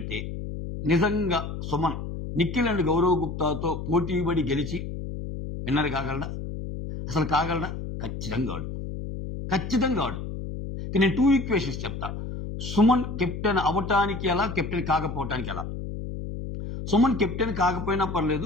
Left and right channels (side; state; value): left; noise; hum, 7 dB below the sound